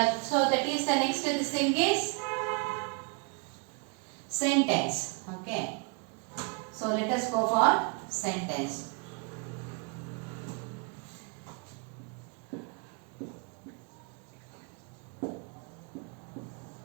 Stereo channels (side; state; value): left; quieter; 33.0 dB